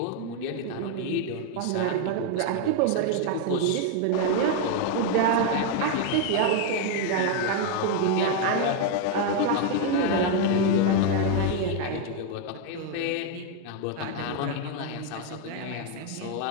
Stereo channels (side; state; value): both; different; correlation 0.01